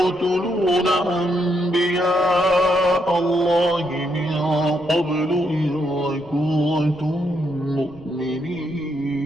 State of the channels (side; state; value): right; noise; rumble, 24 dB below the sound